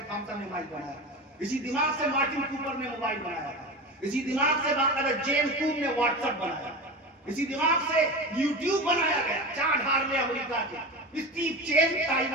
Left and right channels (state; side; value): normal; both; correlation 0.27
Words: تھامسن نے مائک بنایا، اسی دماغ سے مارٹن کوپر نے موبائل بنایا، اسی دماغ سے باقاعدہ جیمز کوب نے واٹس ایپ بنایا، اسی دماغ سے یوٹیوب بنایا گیا، چارلز ہارلے امریکہ کے، اسٹیو چین